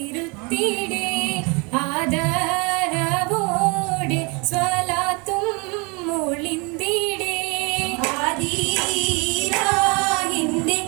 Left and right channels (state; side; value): quieter; left; 30.5 dB